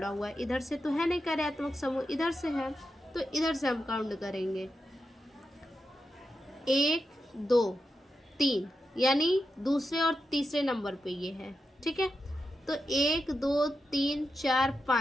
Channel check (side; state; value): both; normal; correlation 0.88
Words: हुआ है, इधर से तो है नहीं कार्यात्मक समूह, इधर से है तो इधर से हम काउंट करेंगे 1 2 3 यानी दूसरे और तीसरे नंबर पे ये है, ठीक है। तो 1 2 3 4